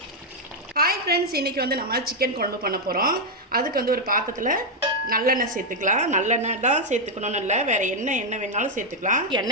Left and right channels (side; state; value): both; normal; correlation 0.00